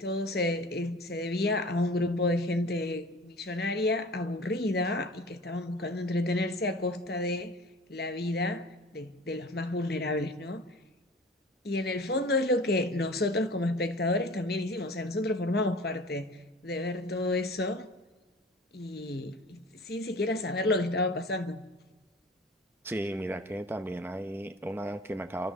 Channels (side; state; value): both; normal; correlation 0.42